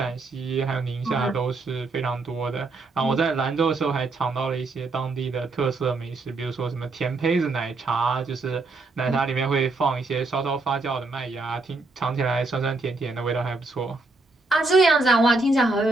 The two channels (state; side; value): quieter; left; 3.4 dB